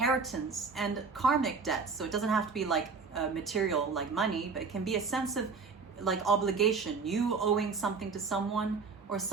and karmic debts. So it doesn't have to be like material, like money, but it can be a sense of like obligation, you owing something to someone or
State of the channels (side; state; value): left; quieter; 4.9 dB